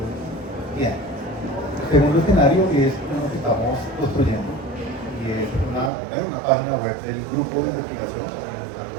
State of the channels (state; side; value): drops out; left; at 5.9 s